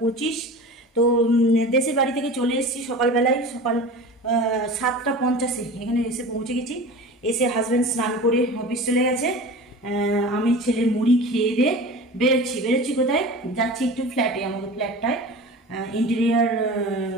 25। তো দেশের বাড়ি থেকে চলে এসেছি সকালবেলায়, সকাল 7টা 50-এ এখানে এসে পৌঁছে গেছি। এসে হাজব্যান্ড স্নান করে অফিস চলে গেছে। আমি ছেলের মুড়ি খেয়ে দিয়ে বেরোচ্ছি কোথায় যাচ্ছি, একটু ফ্ল্যাটে, আমাদের ফ্ল্যাটটায় ইন্টেরিয়ার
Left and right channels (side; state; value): both; normal; correlation 0.35